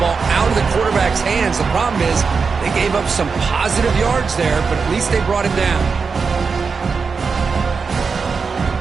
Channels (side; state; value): left; quieter; 5.2 dB